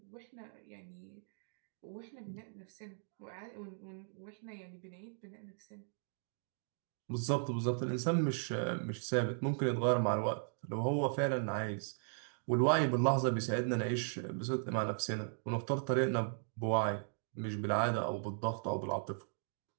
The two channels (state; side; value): silent; left; digital silence